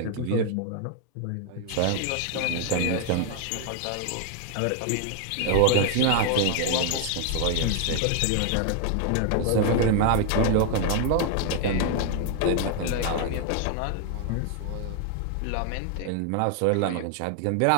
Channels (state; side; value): different; both; correlation 0.00